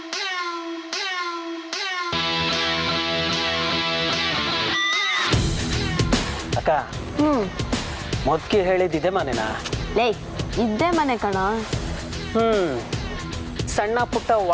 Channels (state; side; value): identical; both; correlation 1.00